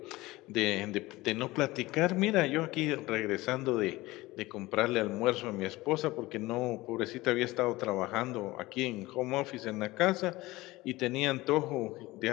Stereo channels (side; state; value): right; quieter; 19.6 dB